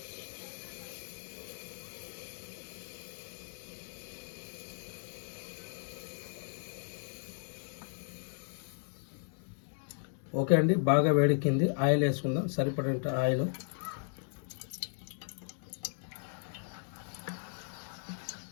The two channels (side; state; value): right; silent; 54 dB below the other